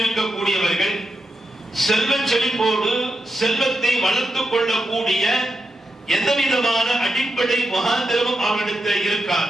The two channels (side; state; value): both; normal; correlation 0.86